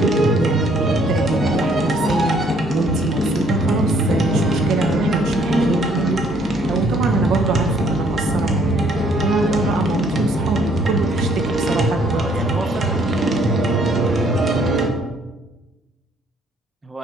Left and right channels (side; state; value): both; normal; correlation 0.64